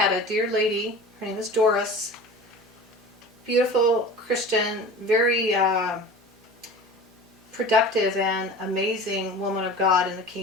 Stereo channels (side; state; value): both; normal; correlation 0.37